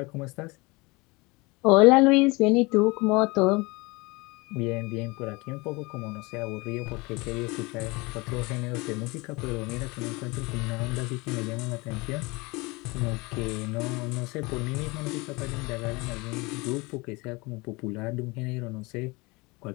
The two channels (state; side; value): quieter; right; 25.3 dB